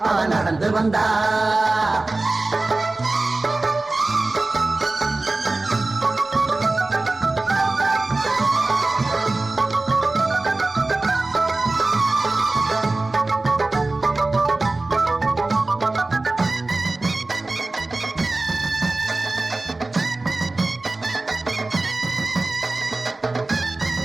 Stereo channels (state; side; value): quieter; left; 3.1 dB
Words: அவ நடந்து வந்தா